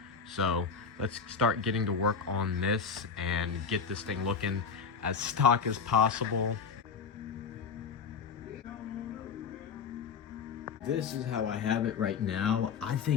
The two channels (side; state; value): right; quieter; 6.0 dB